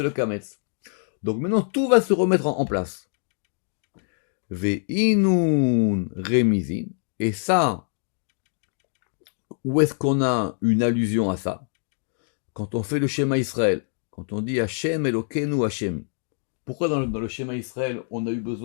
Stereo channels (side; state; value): right; silent; digital silence